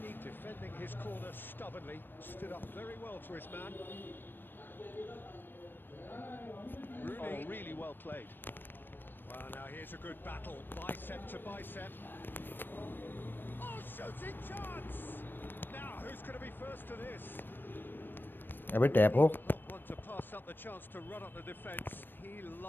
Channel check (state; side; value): late; right; 0.095 ms